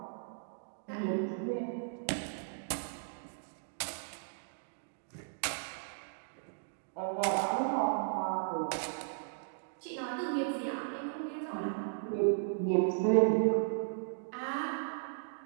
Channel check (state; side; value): silent; left; digital silence